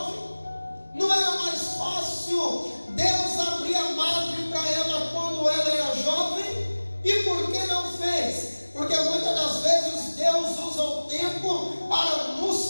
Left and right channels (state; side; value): inverted; both; correlation -1.00